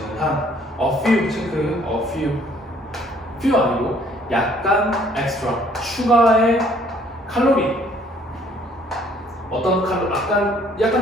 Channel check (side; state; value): both; normal; correlation 0.61